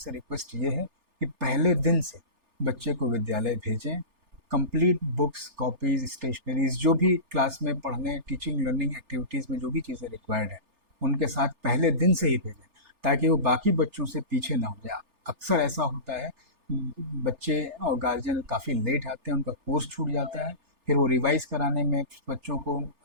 रिक्वेस्ट ये है कि पहले दिन से बच्चे को विद्यालय भेजें, कंप्लीट बुक्स, कॉपीज़, स्टेशनरीज़, जो भी क्लास में पढ़ने, टीचिंग लर्निंग एक्टिविटीज़ में जो भी चीज़ें रिक्वायर्ड है उनके साथ पहले दिन से ही भेजें, ताकि वो बाकी बच्चों से पीछे ना हो जाए। अक्सर ऐसा होता है बच्चे और गार्जियन काफ़ी लेट आते हैं, उनका कोर्स छूट जाता है, फिर वो रिवाइज़ कराने में, बच्चों को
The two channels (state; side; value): late; left; 3.4 ms